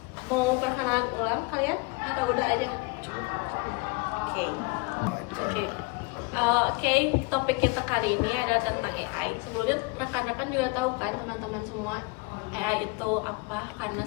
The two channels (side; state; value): right; quieter; 27.3 dB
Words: Mau perkenalan ulang kalian atau udah aja? Oke, topik kita kali ini adalah tentang AI. Sebelumnya rekan-rekan juga tahu kan teman-teman semua AI itu apa, karena